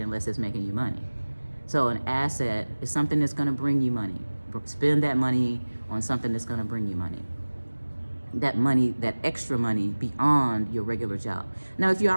unless it's making you money. So an asset is something that's going to bring you money. Spend that money on something that's going to bring you money. That money, that extra money beyond your regular job. Now, if you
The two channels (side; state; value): both; inverted; correlation -1.00